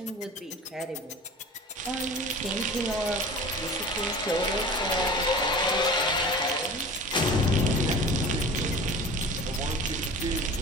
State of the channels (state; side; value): normal; both; correlation 0.38